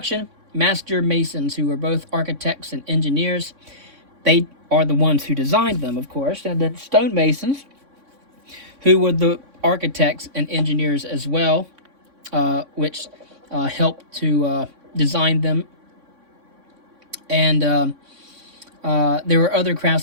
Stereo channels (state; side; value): late; left; 3.6 ms